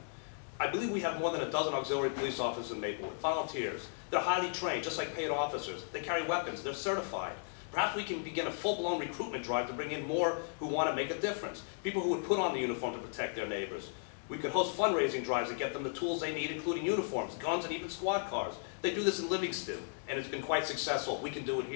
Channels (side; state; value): right; silent; digital silence